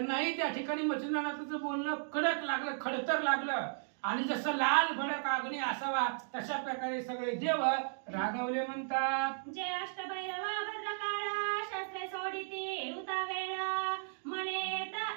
त्या ठिकाणी मच्छिंद्रनाथाचं बोलणं कडक लागलं, खडतर लागलं. आणि जसं लाल भडक अग्नी असावा तशा प्रकारे सगळे देव रागावले. म्हणतात जे अष्टभैरवा भद्रकाळ शस्त्रे सोडिती उता वेळ म्हणे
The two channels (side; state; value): left; silent; digital silence